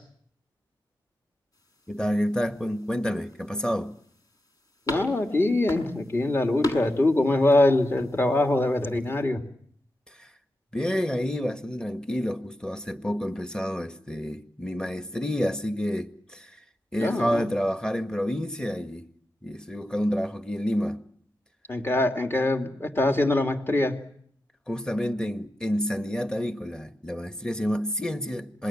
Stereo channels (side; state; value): both; normal; correlation 0.89